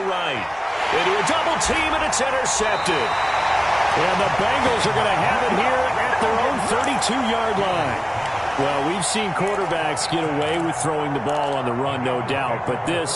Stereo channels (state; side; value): identical; both; correlation 1.00